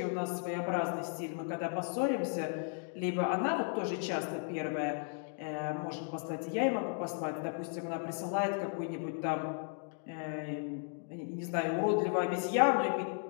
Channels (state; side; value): silent; right; 54 dB below the other